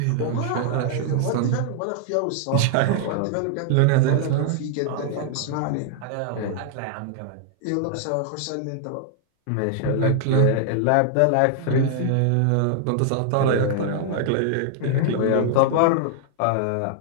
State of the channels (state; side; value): different; both; correlation 0.00